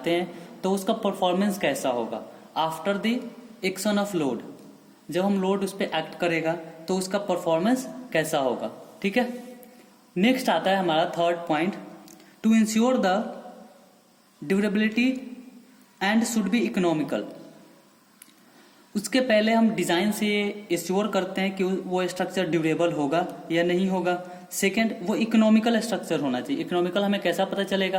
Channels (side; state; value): both; identical; correlation 1.00